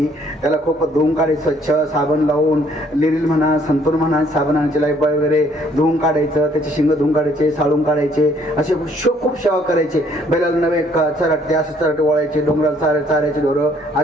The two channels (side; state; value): both; normal; correlation 0.63